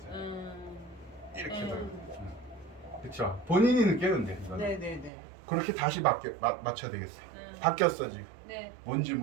이렇게 해도. 그렇죠. 본인이 느끼는데 이거는. 네네네. 그렇게 다시 맞춰야 되겠어요. 바뀌었어 지금. 네. 뭔지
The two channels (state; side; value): drops out; left; at 5.1 s